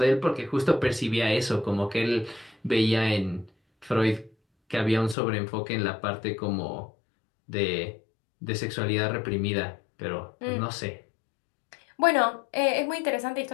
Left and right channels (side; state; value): right; drops out; at 5.2 s